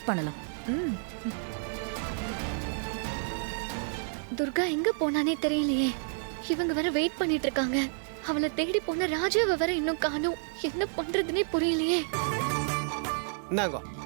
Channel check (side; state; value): left; silent; 58 dB below the other